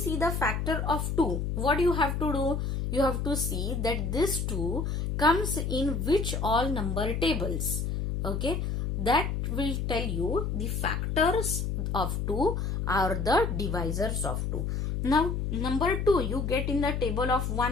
the factor of 2, what you have to do? You have to see that this 2 comes in which all number tables. Okay, that will tell you the factors of 2 are the divisors of 2. Now number 2 you get in the table of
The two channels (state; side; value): noise; left; hum, 1 dB below the sound